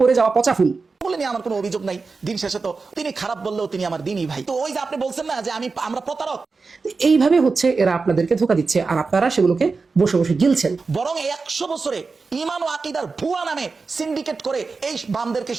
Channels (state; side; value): quieter; left; 4.3 dB